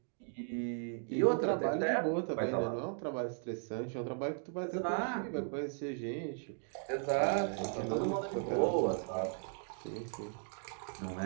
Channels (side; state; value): left; silent; 53 dB below the other